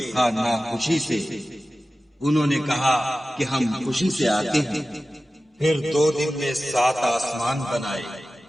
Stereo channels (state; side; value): normal; both; correlation 0.95